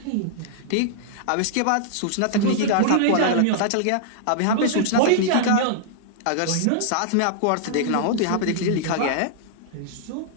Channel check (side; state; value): both; different; correlation -0.01